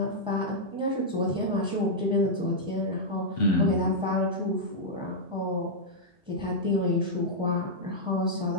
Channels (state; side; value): normal; both; correlation -0.07